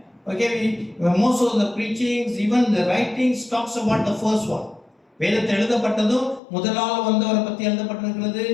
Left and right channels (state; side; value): drops out; right; at 6.4 s